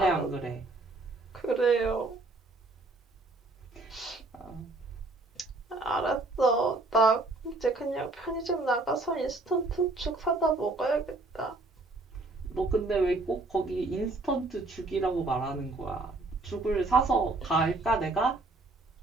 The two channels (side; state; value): left; quieter; 3.2 dB